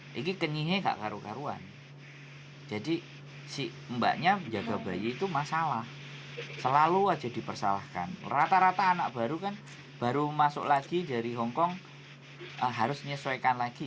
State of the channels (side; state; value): both; identical; correlation 1.00